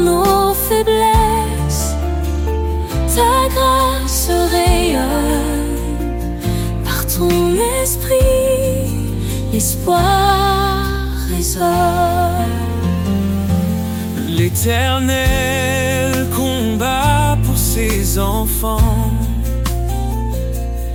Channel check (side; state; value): both; identical; correlation 1.00